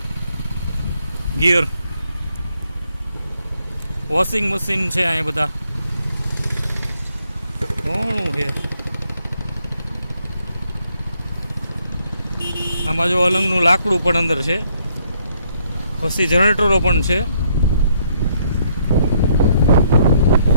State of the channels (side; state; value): both; inverted; correlation -0.70